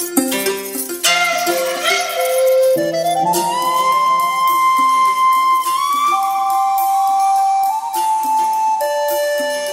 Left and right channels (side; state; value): both; identical; correlation 1.00